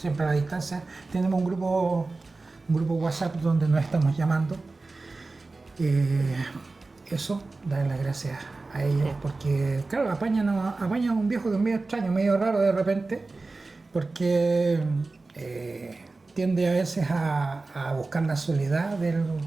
a la distancia. Tenemos un grupo WhatsApp donde nos estamos llamando. Eso, darle las gracias a ellos, porque claro, apañan un viejo que es medio extraño, medio raro de repente, porque tiende a veces a buscar la soledad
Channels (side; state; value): left; quieter; 3.5 dB